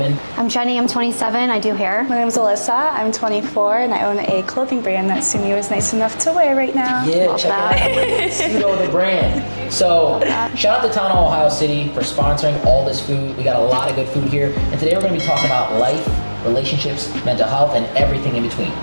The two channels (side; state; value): both; inverted; correlation -1.00